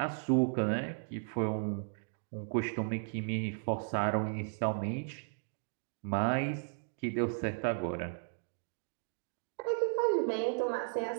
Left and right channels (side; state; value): left; silent; digital silence